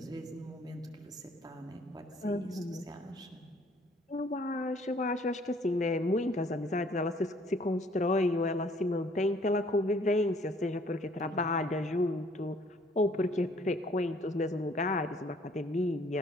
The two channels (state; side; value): normal; both; correlation 0.60